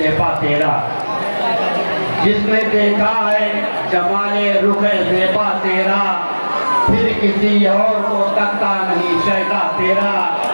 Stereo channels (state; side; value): inverted; both; correlation -1.00